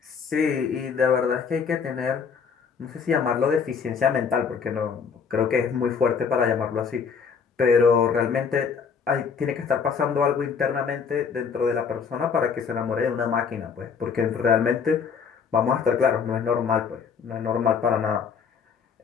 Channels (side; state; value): right; quieter; 6.2 dB